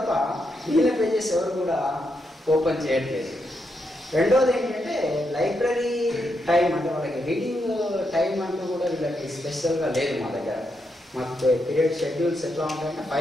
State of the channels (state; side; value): normal; both; correlation 0.82